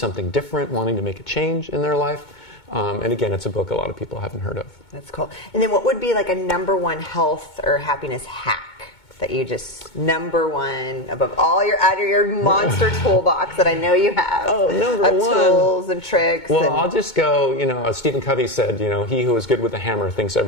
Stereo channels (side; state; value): right; late; 2.2 ms